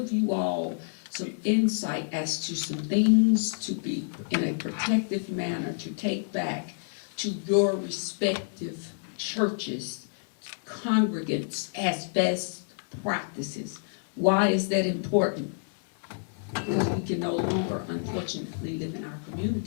you all some insight as to some things to be in a protective manner to take back to your respective churches, congregants, as best practices. Why is that important? Because we can no longer, unfortunately, live in our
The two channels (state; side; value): silent; right; digital silence